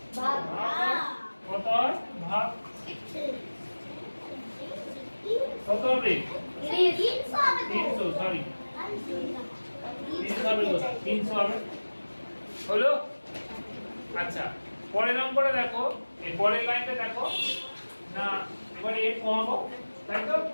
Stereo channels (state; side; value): inverted; both; correlation -1.00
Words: ভাগ। কত হয়? ভাগ। কত হবে? 300, সরি 300 হবে, 300 হবে। হলো? আচ্ছা পরের অঙ্কটা দেখো, এই পরের লাইনটা দেখো না, এবারে এর কমাবো, তাই তো?